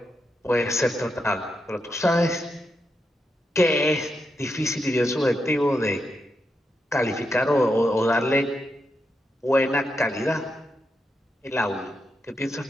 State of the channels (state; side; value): normal; both; correlation 0.84